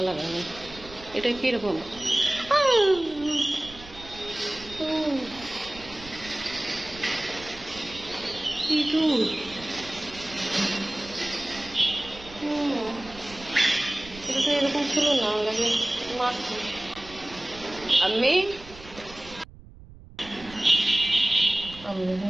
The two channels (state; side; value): noise; right; rumble, 18 dB below the sound